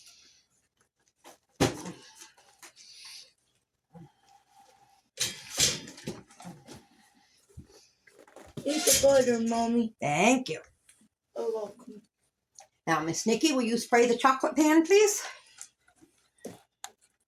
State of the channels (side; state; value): both; identical; correlation 1.00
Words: Eat the butter, Mommy. Thank you. You're welcome. Now, Miss Nikki, will you spray the chocolate pan, please?